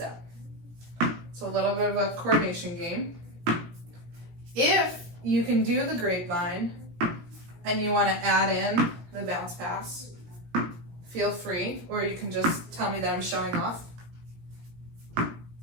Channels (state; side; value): late; left; 17 ms